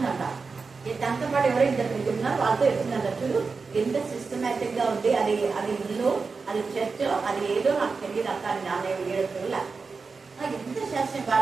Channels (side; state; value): left; quieter; 4.6 dB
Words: దాంతో పాటు ఎవరో 2 ఉన్నారు, వాళ్ళతో చెప్తుందంట, చూడు ఎంత సిస్టమేటిక్ గా ఉంది, అది ఇల్లు, అది చర్చ్, అది ఏదో నాకు తెలియదు అక్క అని నాన్న 7 రోజుల ఎంత శాస్త్రం